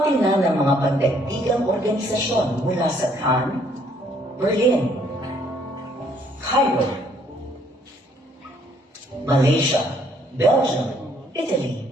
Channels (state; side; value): normal; both; correlation 0.65